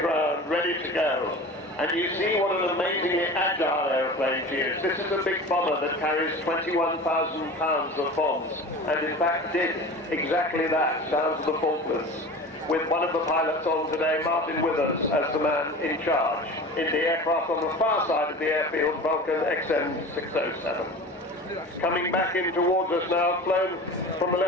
ready to go. And you see what an amazingly agile aeroplane she is. This is a big bomber that carries 21,000 pounds of bombs, and in fact did exactly that down to the Falklands, with one of the pilots on today, Martin Withers, as the man in charge in the aircraft on the far side of the airfield, Vulcan XM607. Coming back in towards us now, flown from the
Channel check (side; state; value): both; normal; correlation 0.35